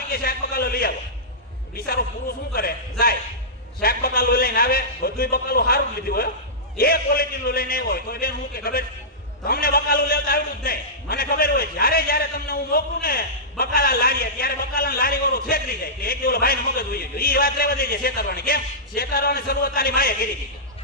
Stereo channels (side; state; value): both; normal; correlation -0.16